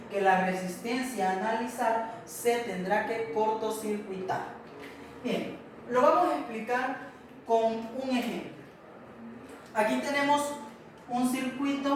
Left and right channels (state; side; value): identical; both; correlation 1.00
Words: que la resistencia a analizar se tendrá que cortocircuitar. Bien, lo vamos a explicar con un ejemplo. Aquí tenemos un